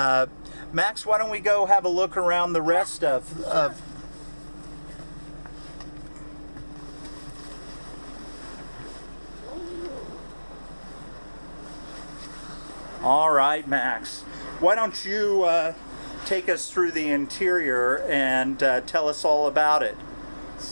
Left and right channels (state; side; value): inverted; both; correlation -1.00